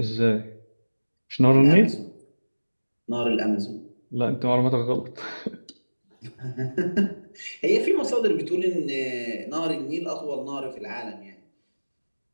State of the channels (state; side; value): inverted; both; correlation -1.00